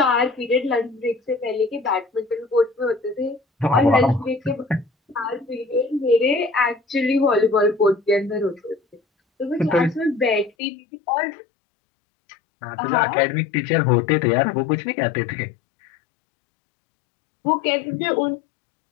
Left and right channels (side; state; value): right; drops out; at 10.5 s